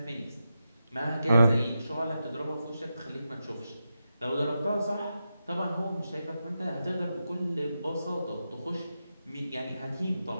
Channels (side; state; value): both; inverted; correlation -0.89